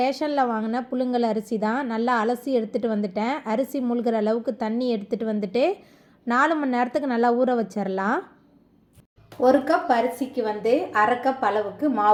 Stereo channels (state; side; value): identical; both; correlation 1.00